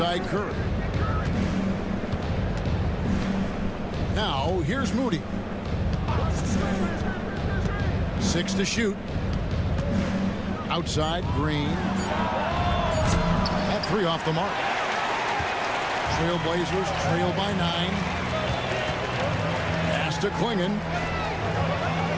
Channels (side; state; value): both; identical; correlation 1.00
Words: Curry. Now, here's Moody. 6 to shoot. Outside, Green. That 3 off the mark. Trailblazers trail by 9. Pass to Klingon.